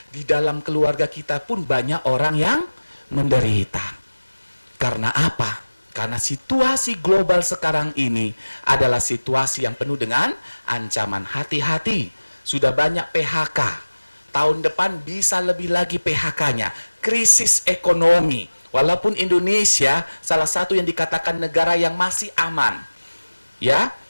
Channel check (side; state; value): both; inverted; correlation -1.00